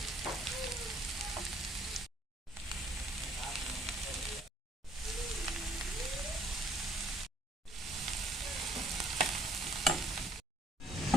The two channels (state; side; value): normal; both; correlation 0.60